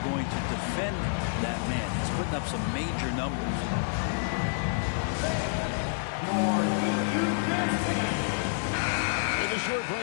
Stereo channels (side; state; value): right; silent; 59 dB below the other